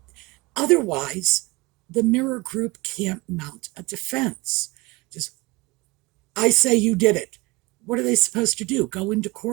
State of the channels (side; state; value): left; quieter; 23.7 dB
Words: Otherwise, the Mirror Group can't mount a defense. Just, I say you did it. What are they supposed to do? Go into